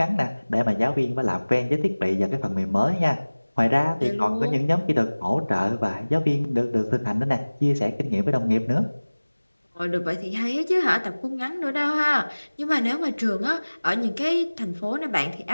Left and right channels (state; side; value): inverted; both; correlation -1.00